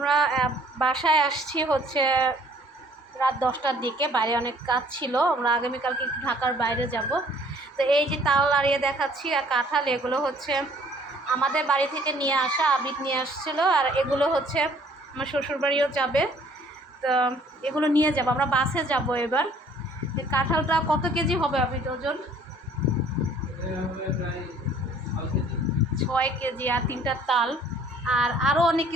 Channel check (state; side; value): normal; both; correlation 0.57